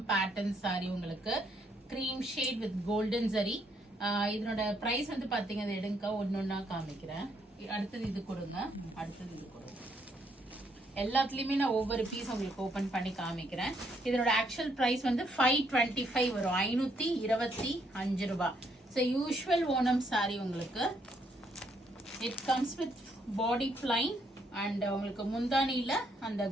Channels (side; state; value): both; normal; correlation 0.72